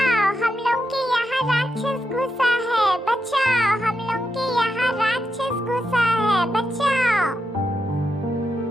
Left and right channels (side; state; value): both; normal; correlation 0.85